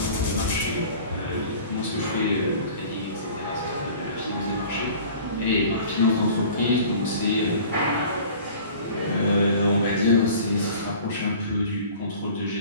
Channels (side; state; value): both; inverted; correlation -0.44